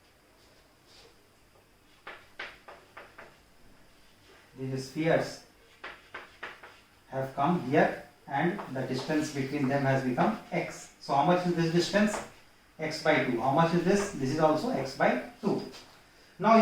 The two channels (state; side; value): identical; both; correlation 1.00